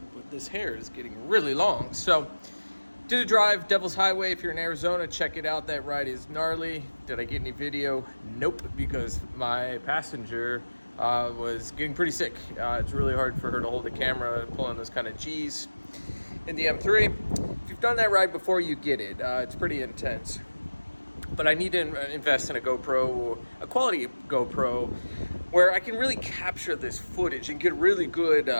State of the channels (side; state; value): both; inverted; correlation -1.00